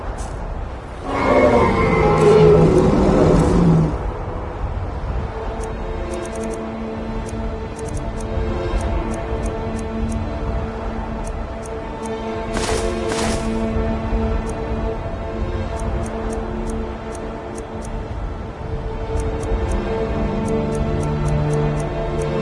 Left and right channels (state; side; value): identical; both; correlation 1.00